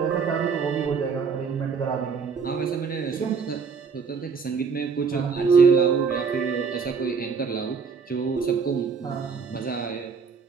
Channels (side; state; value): left; quieter; 5.6 dB